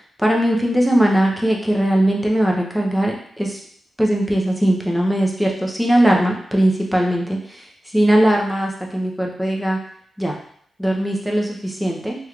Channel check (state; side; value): normal; both; correlation 0.95